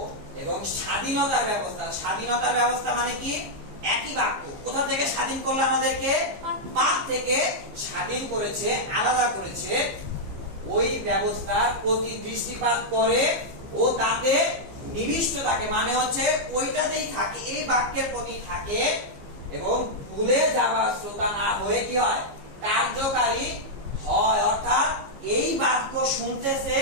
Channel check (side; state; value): left; late; 15 ms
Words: এবং স্বাধীনতার ব্যবস্থা। স্বাধীনতার ব্যবস্থা মানে কি? একই বাক্য। কোথা থেকে স্বাধীন করলো আমাদেরকে? পাপ থেকে স্বাধীন করেছে, আলাদা করেছে। ওই ব্যবস্থার প্রতি দৃষ্টিপাত করে ও তাতে নিবিষ্ট থাকে, মানে হচ্ছে ওইটাতেই থাকে, এই বাক্যের প্রতি থাকে, এবং ভুলে যাওয়া শ্রোতা না হয়ে কি হয়, কার্যকারী হয়। অর্থাৎ এই বাক্য শুনতেছে,